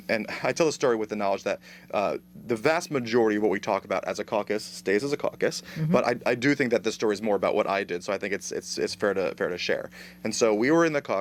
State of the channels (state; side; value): identical; both; correlation 1.00